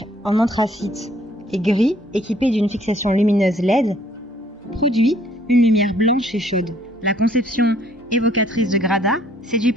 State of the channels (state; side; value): normal; both; correlation 0.62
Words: en anthracite et gris, équipée d'une fixation lumineuse LED, produit une lumière blanche et chaude. La conception évocatrice de Grada séduit